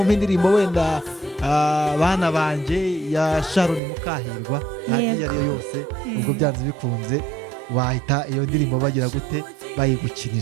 indirimbo wenda bana banje ya Sharon Mukahirwa, iyo ariyo yose, ubwo byanze bikunze wahita iyo ndirimbo bagira gute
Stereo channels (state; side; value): drops out; left; at 3.8 s